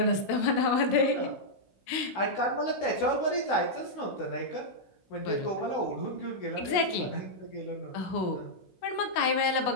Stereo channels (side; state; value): right; late; 16 ms